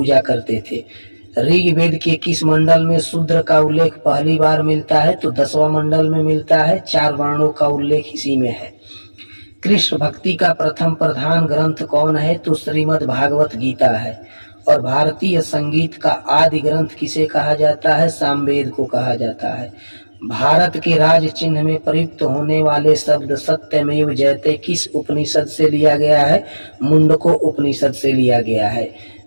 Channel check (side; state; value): both; inverted; correlation -1.00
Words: करते थे। ऋग्वेद के किस मंडल में शूद्र का उल्लेख पहली बार मिलता है? तो 10वां मंडल में मिलता है। 4 वर्णों का उल्लेख इसी में है। कृष्ण भक्ति का प्रथम प्रधान ग्रंथ कौन है? तो श्रीमद् भागवत गीता है। और भारतीय संगीत का आदि ग्रंथ किसे कहा जाता है? सामवेद को कहा जाता है। भारत के राज चिन्ह में प्रयुक्त होने वाले शब्द सत्यमेव जयते किस उपनिषद से लिया गया है? मुंडको उपनिषद से लिया गया है।